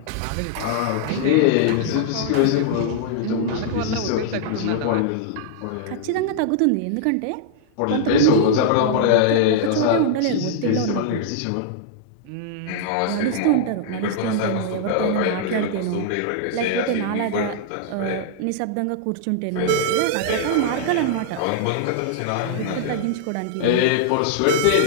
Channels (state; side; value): different; both; correlation -0.01